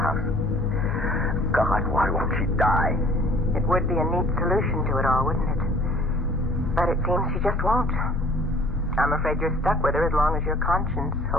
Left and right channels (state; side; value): normal; both; correlation 0.53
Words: God, why won't she die? It would be a neat solution to it all, wouldn't it? But it seems she just won't. I'm afraid you're stuck with her as long as your conscience